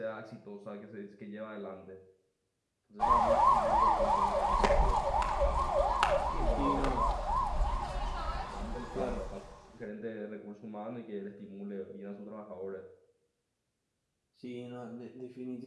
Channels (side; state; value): both; identical; correlation 1.00